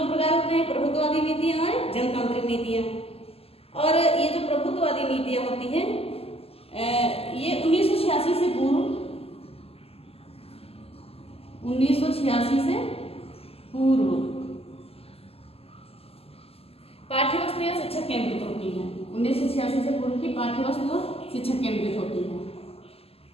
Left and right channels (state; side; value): late; right; 0.29 ms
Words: प्रकार होते हैं, प्रभुत्ववादी नीतियां और जनतांत्रिक नीतियां। और ये जो प्रभुत्ववादी नीतियां होती हैं, ये 1986 से पूर्व 1986 से पूर्व पाठ्यवस्तु या शिक्षक केंद्रित होती है। 1986 से पूर्व की पाठ्यवस्तु शिक्षक केंद्रित होती है।